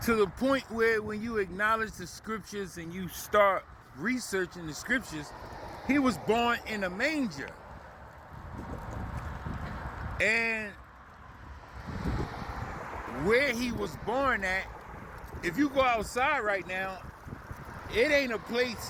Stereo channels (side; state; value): both; identical; correlation 1.00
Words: To the point where when you acknowledge the scriptures and you start researching the scriptures, he was born in a manger. And where he was born at, if you go outside right now, it ain't a